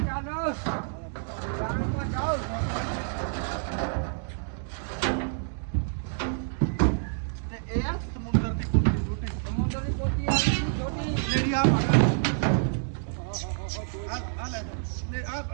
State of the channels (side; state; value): left; silent; digital silence